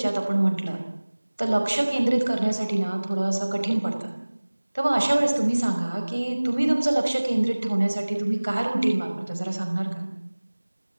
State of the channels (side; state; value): both; inverted; correlation -1.00